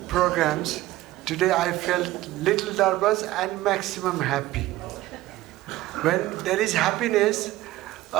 programs, today I felt little nervous and maximum happy. When there is happiness,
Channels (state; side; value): quieter; left; 16.7 dB